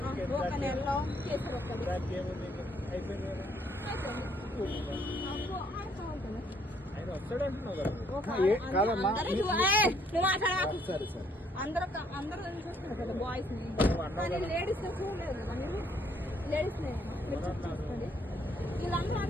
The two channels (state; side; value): normal; both; correlation 0.66